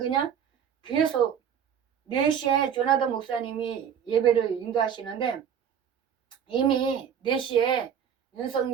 계속 4시에 조나단 목사님이 예배를 인도하시는데 이미 4시에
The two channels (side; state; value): left; quieter; 8.3 dB